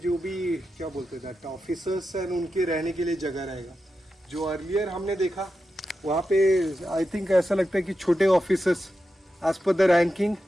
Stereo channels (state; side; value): normal; both; correlation 0.89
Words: भी क्या बोलते हैं ऑफिसर्स एंड उनके रहने के लिए जगह रहेगा। जो अर्लियर हमने देखा वहाँ पे आई थिंक ऐसा लगता है कि छोटे officers as per the ranking